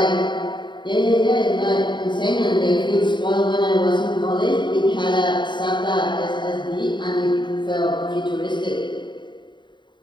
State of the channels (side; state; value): right; late; 0.22 ms